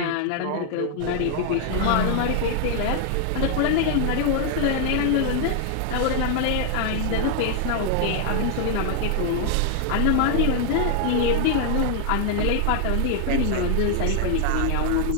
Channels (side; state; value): both; different; correlation 0.00